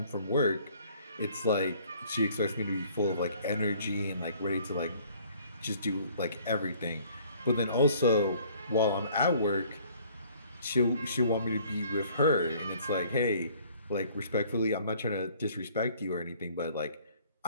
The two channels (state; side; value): inverted; both; correlation -0.57